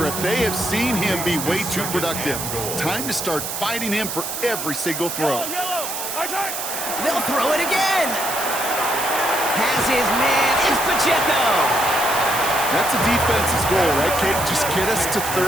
They have seen him be way too productive. Time to start fighting him for every single throw. They'll throw it again. Has his man, is Pacheco. That's a defense's goal, right, Kate? Just get us to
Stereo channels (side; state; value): right; noise; hiss, 5 dB below the sound